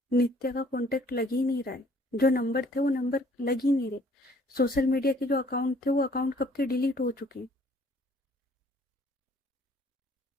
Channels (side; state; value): both; normal; correlation 0.59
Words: नित्या का कांटेक्ट लग ही नहीं रहा है, जो नंबर थे वो नंबर लग ही नहीं रहे। सोशल मीडिया के जो अकाउंट थे वो अकाउंट कब के डिलीट हो चुके हैं।